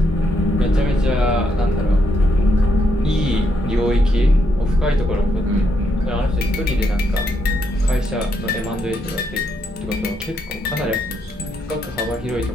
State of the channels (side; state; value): both; normal; correlation 0.78